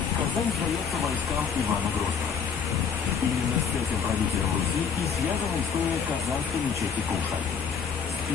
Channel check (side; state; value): right; quieter; 6.6 dB